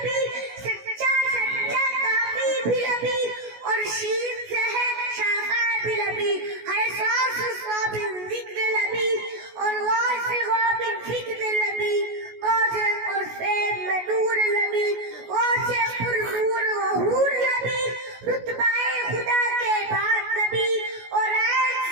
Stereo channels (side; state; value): left; late; 16 ms